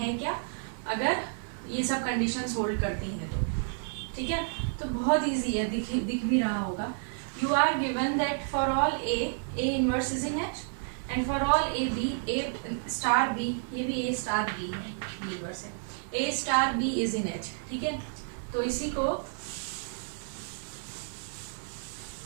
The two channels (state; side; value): silent; left; 57 dB below the other